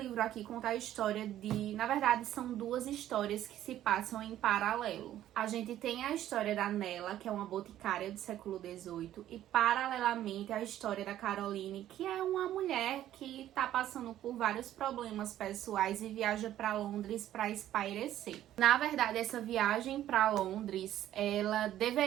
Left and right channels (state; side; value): quieter; left; 12.5 dB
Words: aqui conta a história de... Na verdade, são 2 histórias que se passam em paralelo. A gente tem a história da Nella, que é uma boticária do século XVIII, e paralelamente a história da Caroline, que é uma mulher que tá passando por vários problemas pessoais e viaja para Londres para espairecer. Na verdade, essa viagem para Londres, ela